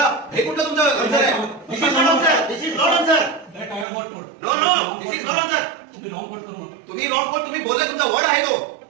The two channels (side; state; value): left; drops out; at 3.9 s